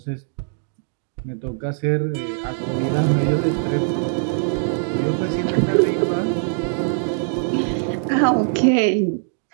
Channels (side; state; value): left; silent; digital silence